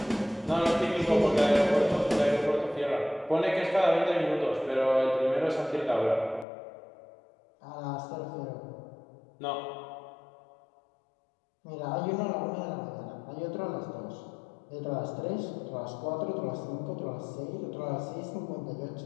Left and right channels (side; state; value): right; drops out; at 6.5 s